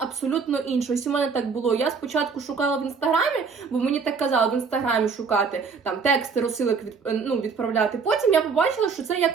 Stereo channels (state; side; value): quieter; left; 5.3 dB